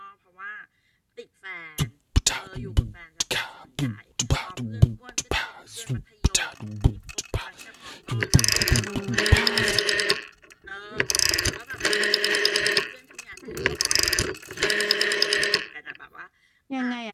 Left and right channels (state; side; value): identical; both; correlation 1.00